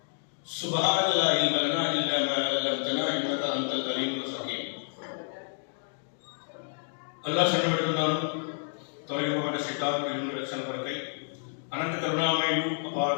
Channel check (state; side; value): silent; right; digital silence